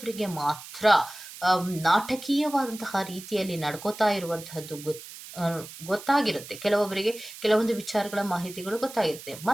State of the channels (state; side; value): noise; right; hiss, 14 dB below the sound